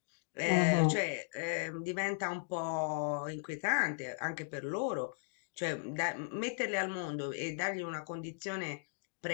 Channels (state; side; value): silent; right; digital silence